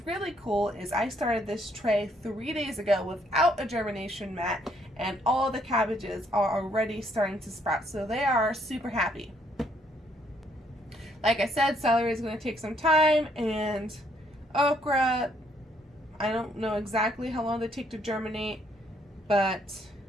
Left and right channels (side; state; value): both; normal; correlation 0.69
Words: really cool is I started this tray 3 days ago without a germination mat, and all the cabbages are already starting to sprout, so they are super happy. Like I said, celery is going to take some time, and okra, I don't know exactly how long they take to germinate, but